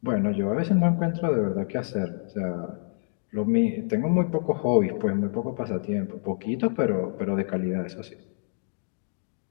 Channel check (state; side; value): silent; right; digital silence